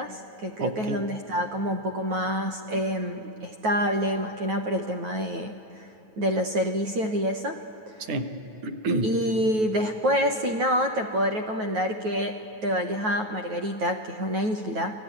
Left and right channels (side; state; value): left; late; 9.3 ms